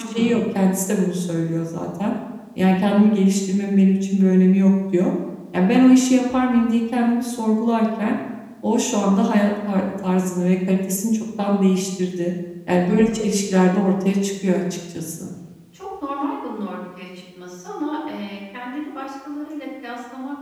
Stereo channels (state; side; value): identical; both; correlation 1.00